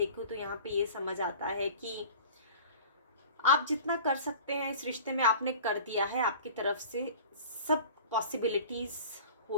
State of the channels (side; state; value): both; inverted; correlation -0.42